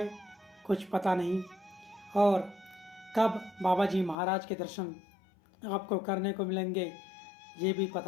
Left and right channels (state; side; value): drops out; right; at 4.2 s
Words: कुछ पता नहीं, और कब बाबा जी महाराज के दर्शन आपको करने को मिलेंगे ये भी